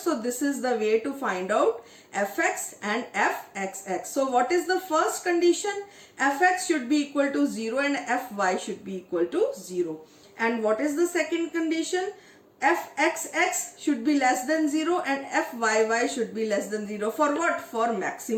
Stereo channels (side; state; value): both; identical; correlation 1.00